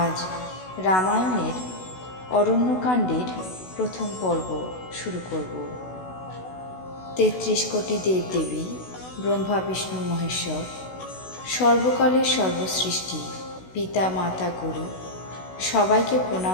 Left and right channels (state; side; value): late; right; 16 ms